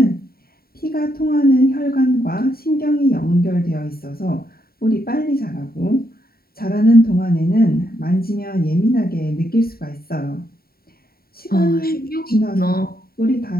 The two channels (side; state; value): right; late; 0.44 ms